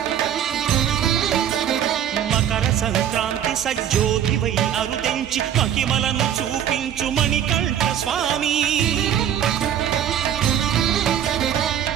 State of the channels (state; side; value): quieter; left; 9.9 dB